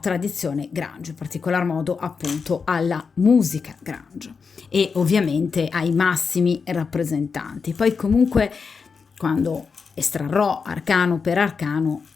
Grange, in particolar modo appunto alla musica Grange e ovviamente ai massimi rappresentanti. Poi comunque quando estrarrò arcano per arcano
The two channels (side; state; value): right; quieter; 5.3 dB